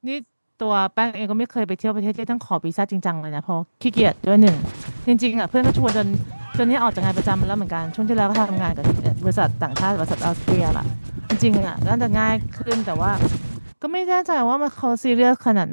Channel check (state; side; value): inverted; both; correlation -1.00